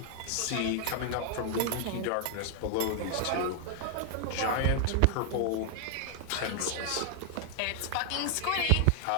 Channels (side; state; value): both; different; correlation 0.00